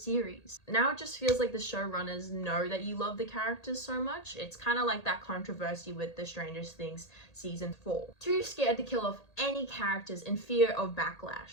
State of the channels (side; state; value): right; late; 1.8 ms